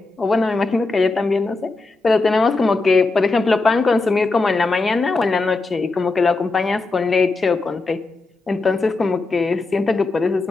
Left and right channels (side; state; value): right; quieter; 3.5 dB